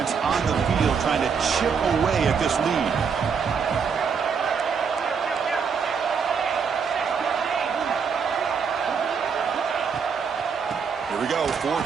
on the field trying to chip away at this lead. Here we go,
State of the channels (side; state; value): left; quieter; 6.1 dB